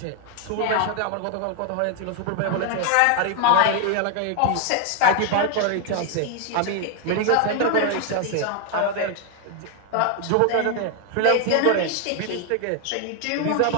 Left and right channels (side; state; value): both; different; correlation 0.00